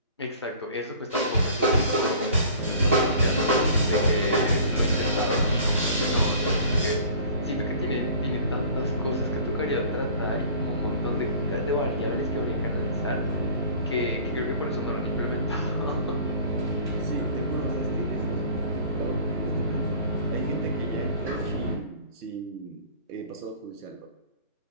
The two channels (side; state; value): both; inverted; correlation -0.46